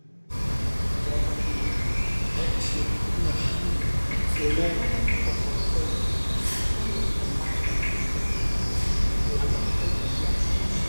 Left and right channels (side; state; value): both; inverted; correlation -1.00